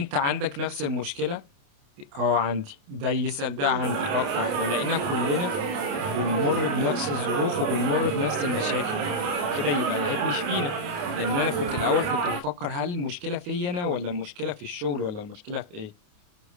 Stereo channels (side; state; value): left; late; 28 ms